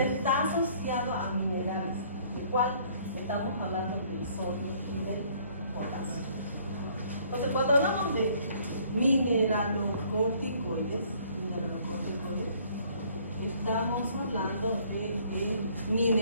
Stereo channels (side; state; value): both; inverted; correlation -0.60